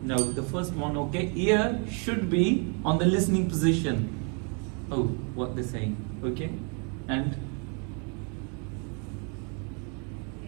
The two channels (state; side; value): quieter; left; 37.3 dB